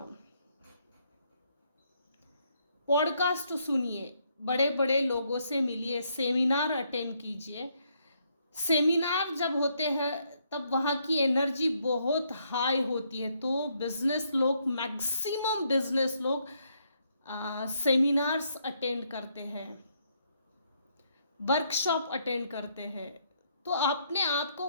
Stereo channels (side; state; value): both; inverted; correlation -0.73